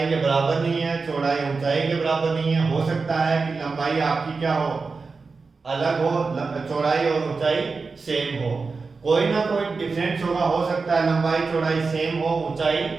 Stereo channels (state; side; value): quieter; left; 4.4 dB